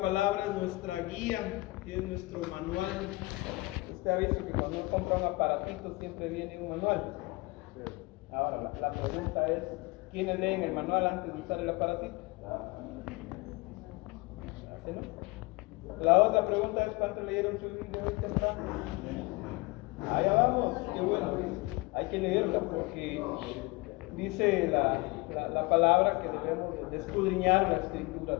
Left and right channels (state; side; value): quieter; right; 23.7 dB